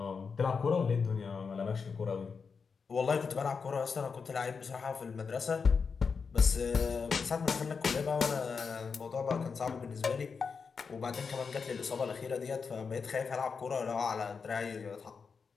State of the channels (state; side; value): quieter; right; 5.4 dB